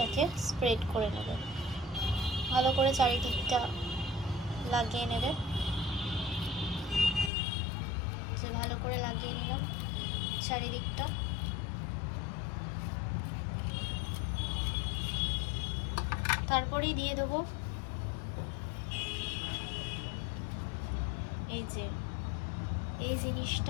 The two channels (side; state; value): right; drops out; at 7.3 s